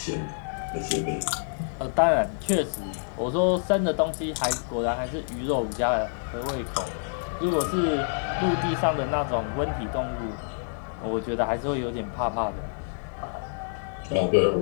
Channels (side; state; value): right; silent; digital silence